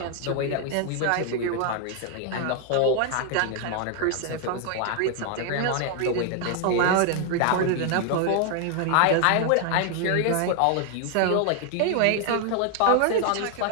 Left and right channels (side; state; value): both; different; correlation 0.00